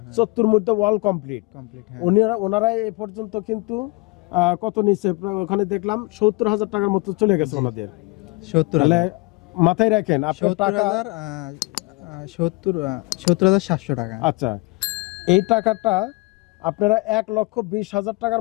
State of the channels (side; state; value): right; quieter; 26.3 dB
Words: 70 মধ্যে ওয়াল কমপ্লিট, ওনারা এ পর্যন্ত কিন্তু কত নিচে, ওখানে দেখলাম 70,000 টাকার মতো চলে গেছে ওনাদের। 70,000 মাথায় রাখেন আপনার টাকা 70,700 টাকা। আচ্ছা, এই টাকাটা আপনারা 1,20,000